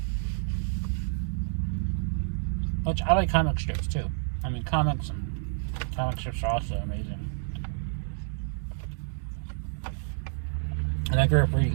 Which I like comic strips too. I mean, comic strips are also amazing. And I grew up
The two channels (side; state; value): left; silent; digital silence